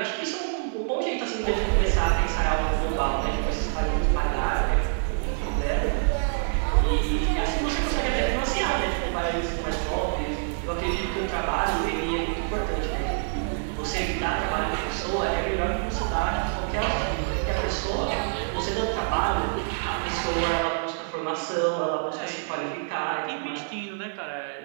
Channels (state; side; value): silent; left; digital silence